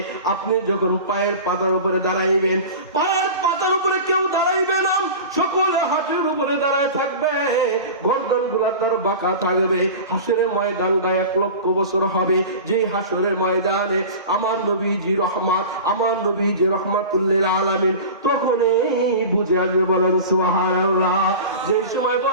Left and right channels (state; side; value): inverted; both; correlation -0.34